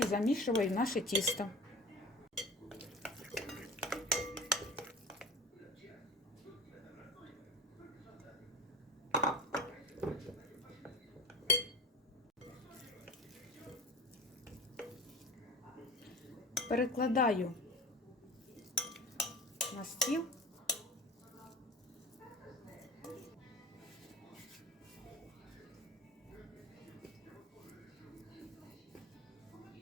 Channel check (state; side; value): normal; both; correlation 0.34